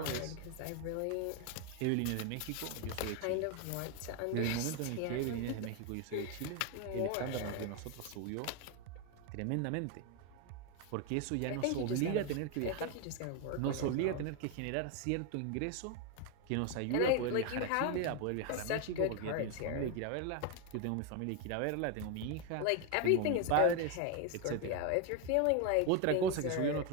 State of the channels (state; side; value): different; both; correlation 0.01